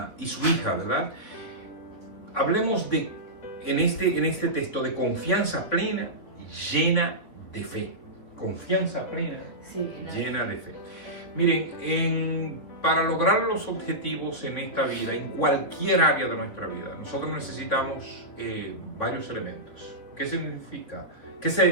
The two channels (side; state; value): right; late; 3.5 ms